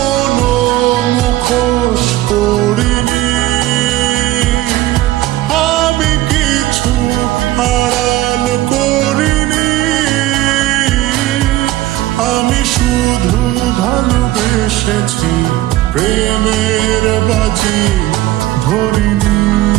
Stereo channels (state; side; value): quieter; left; 16.0 dB